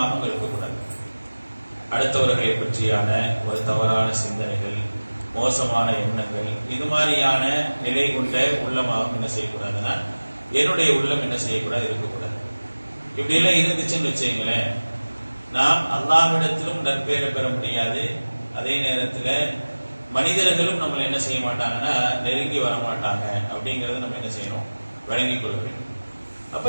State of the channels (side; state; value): both; inverted; correlation -1.00